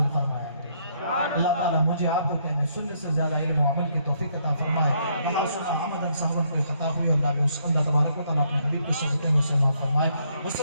فرمایا ہے. اللہ تعالیٰ مجھے آپ کو کہنے سننے سے زیادہ علم و عمل کی توفیق عطا فرمائے. وہاں سنا حمدن صحبن کوئی خطا ہوئی اللہ تبارک و تعالیٰ اپنے حبیب کی صحبتیں میں سے معاف فرمائے.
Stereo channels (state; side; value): inverted; both; correlation -0.71